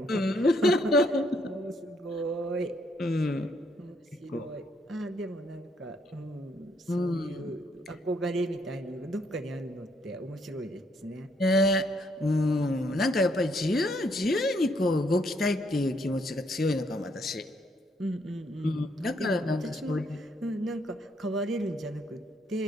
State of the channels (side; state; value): both; normal; correlation 0.71